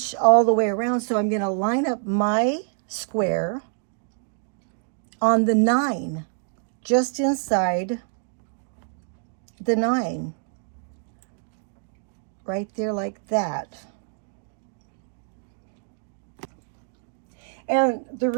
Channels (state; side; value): silent; left; 61 dB below the other